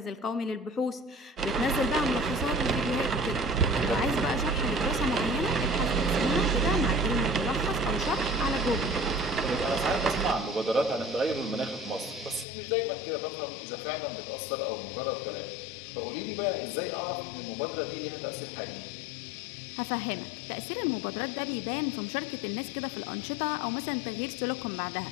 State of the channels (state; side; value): drops out; right; at 12.5 s